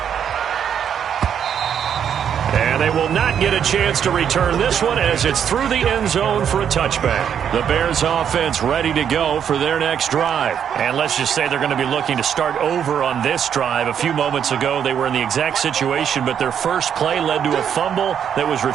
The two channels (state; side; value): quieter; left; 8.5 dB